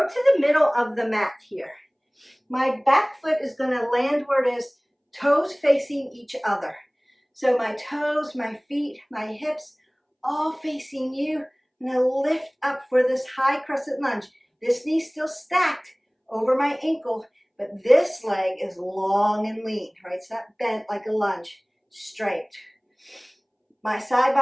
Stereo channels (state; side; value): identical; both; correlation 1.00